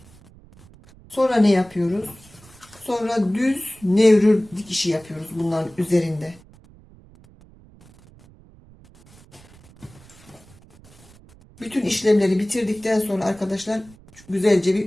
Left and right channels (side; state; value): right; noise; rumble, 25 dB below the sound